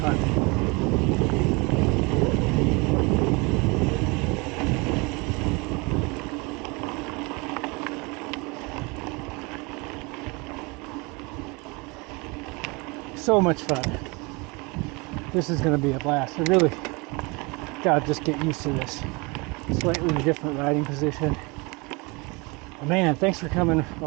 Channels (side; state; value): left; quieter; 27.5 dB